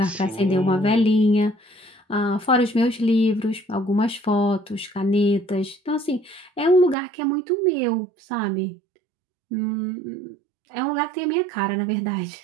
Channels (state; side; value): drops out; left; at 7.0 s